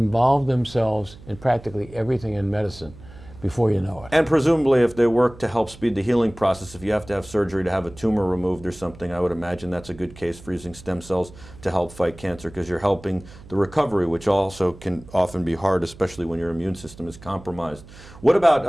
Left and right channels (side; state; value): right; noise; hum, 20 dB below the sound